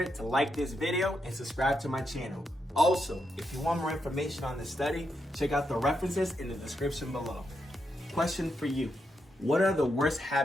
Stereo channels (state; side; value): normal; both; correlation 0.83